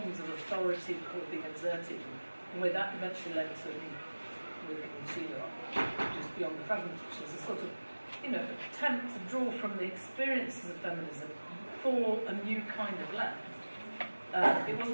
of authority that were being exerted, and where that eventually led to me working with Sheila, which is Beyond the Fragments, which is a sort of attempt to draw from the experiences of feminism for a new kind of left. It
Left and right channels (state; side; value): inverted; both; correlation -1.00